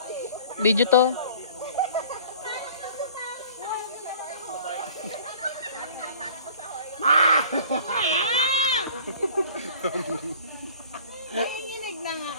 Video to. Nanginginig na nga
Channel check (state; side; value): inverted; both; correlation -0.49